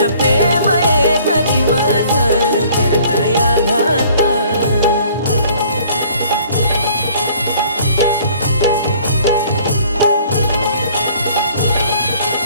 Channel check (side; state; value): both; inverted; correlation -0.55